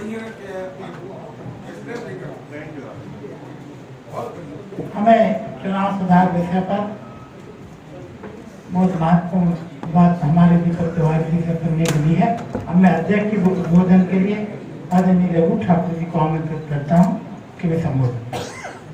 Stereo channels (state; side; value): identical; both; correlation 1.00